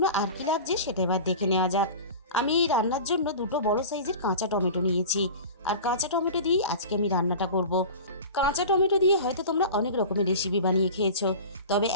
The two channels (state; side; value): inverted; both; correlation -0.34